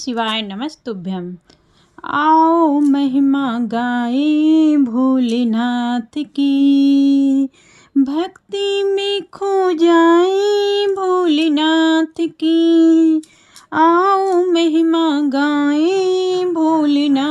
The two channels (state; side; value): identical; both; correlation 1.00